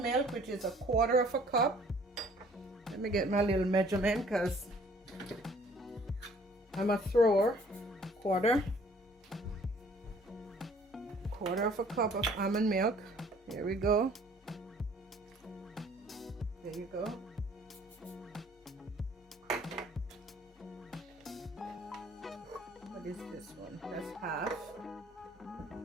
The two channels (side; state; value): both; normal; correlation 0.57